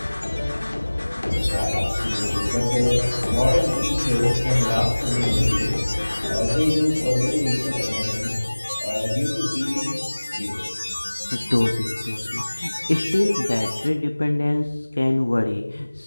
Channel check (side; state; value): both; inverted; correlation -1.00